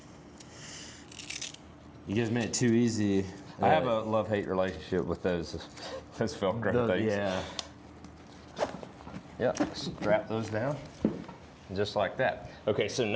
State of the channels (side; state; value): both; identical; correlation 1.00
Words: You guys made it too easy. I have a love-hate relationship with those Velcro things. Yeah. Yep, strap those down, just like that. Okay, so